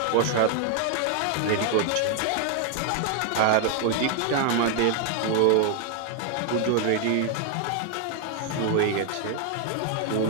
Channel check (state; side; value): different; both; correlation 0.00